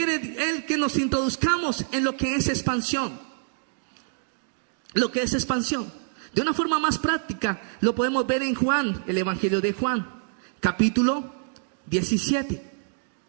Él que nos introduzcamos en lo que es expansión. Lo que es expansión. De una forma más práctica lo podemos ver en Juan, el Evangelio de Juan, capítulo 17.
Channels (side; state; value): left; silent; digital silence